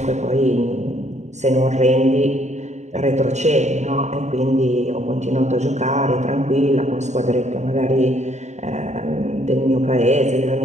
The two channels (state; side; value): late; left; 0.34 ms